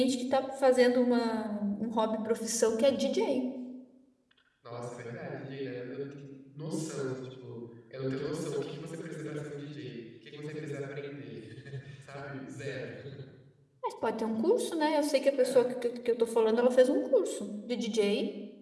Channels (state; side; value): identical; both; correlation 1.00